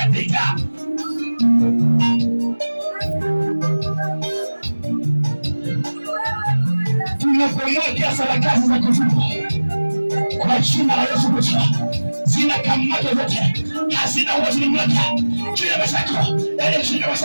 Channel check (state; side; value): inverted; both; correlation -1.00